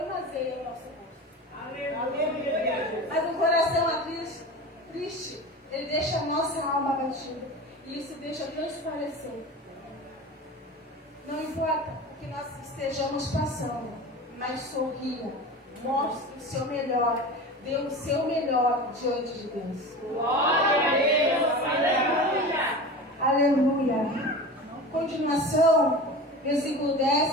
o nosso rosto. Aleluia. Mas o coração triste, ele deixa a nossa alma abatida. E isso deixa transparecer. Não importa o que nós estejamos passando, mas sorria, mostre o seu melhor, dê o seu melhor diante de Deus. Glória a Deus. Aleluia. Aleluia. Continuação, versículo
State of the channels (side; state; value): both; normal; correlation 0.31